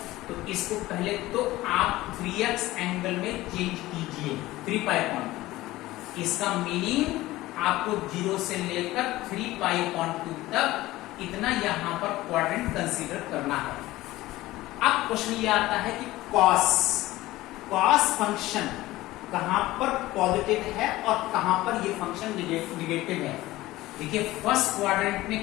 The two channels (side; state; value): right; quieter; 17.5 dB